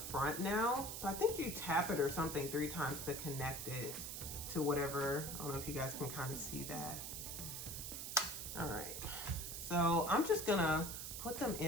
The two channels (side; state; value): right; noise; hiss, 6 dB below the sound